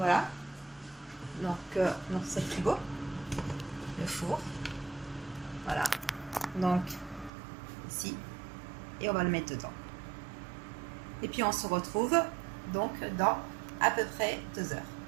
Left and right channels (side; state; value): left; drops out; at 7.3 s